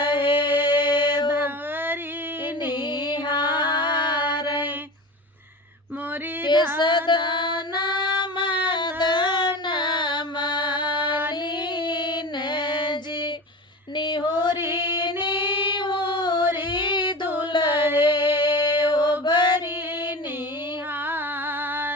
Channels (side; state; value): both; normal; correlation 0.31